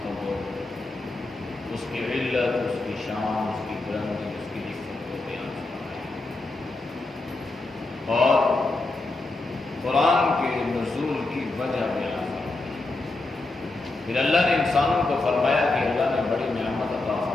اس کی علت، اس کی شان، اس کی بلندی، اس کی عزت کو بیان فرمایا، اور قرآن کے نزول کی وجہ بیان فرمائی۔ پھر اللہ نے انسانوں کو فرمایا کہ اللہ نے بڑی نعمت عطا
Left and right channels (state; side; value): quieter; right; 3.1 dB